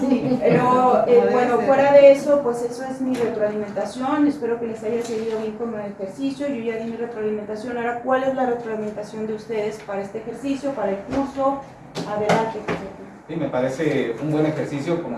pero bueno, fuera de eso, pues eso es mi retroalimentación. Espero que les haya servido bien como ejercicio. Yo ya di mi retroalimentación. Ahora, ¿cuál es la retroalimentación de ustedes para este ejercicio, para el curso? Adelante. Sí, me parece un buen ejercicio,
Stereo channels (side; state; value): both; identical; correlation 1.00